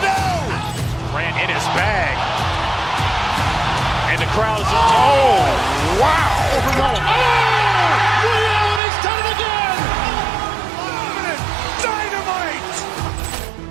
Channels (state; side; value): drops out; left; at 8.8 s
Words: Ran in his bag. And the crowd is, oh, wow. He's done it again. Dynamite.